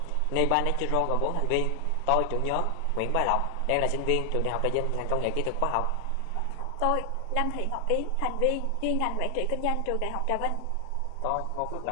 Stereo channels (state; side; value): different; both; correlation 0.00